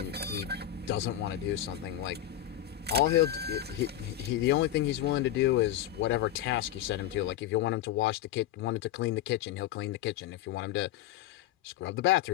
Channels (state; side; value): quieter; right; 12.1 dB